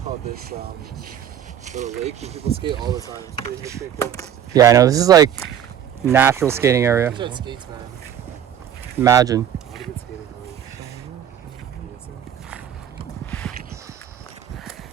called, this little lake where people skate all the time. It's pretty cool. Yeah, I know. This is like natural skating area. We should have skates, man. Imagine. A lot of good skating.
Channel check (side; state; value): left; quieter; 9.7 dB